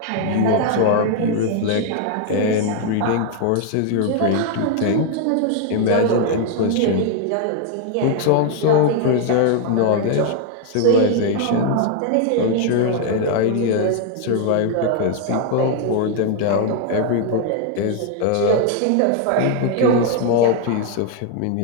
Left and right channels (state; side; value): different; both; correlation 0.00